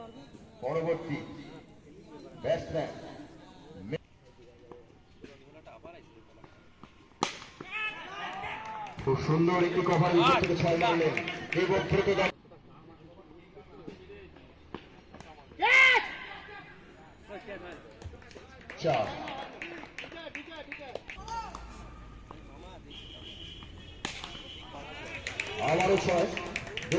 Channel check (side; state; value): both; identical; correlation 1.00